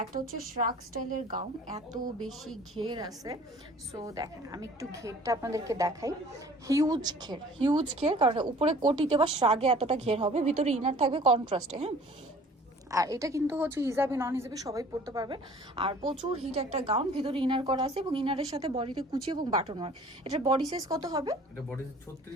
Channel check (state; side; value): normal; both; correlation 0.50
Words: একটা হচ্ছে শ্রাক স্টাইলের গাউন, এত বেশি ঘের আছে। সো দেখেন, আমি একটু ঘেরটা আপনাদেরকে দেখাই। হিউজ ঘের, কারণ উপরে কোটিতে বা শ্রাগে এতটা ঘের হবে, ভিতরে ইনার থাকবে কন্ট্রাস্টে। হ্যাঁ, আর এটা কিন্তু হচ্ছে হিজাবি নন হিজাবি সবাই পড়তে পারবে। আর প্রচুর হিট একটা গাউন, ভিতরে ইনার করা আছে এবং ইনারের সাথে বডিতে কুচি এবং বাটন ওয়ার্ক। এটার বডি সাইজ কত হবে? এটা বডি